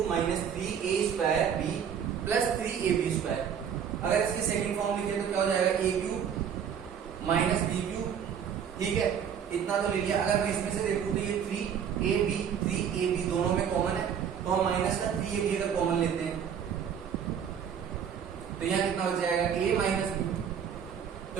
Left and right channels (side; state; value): left; quieter; 8.0 dB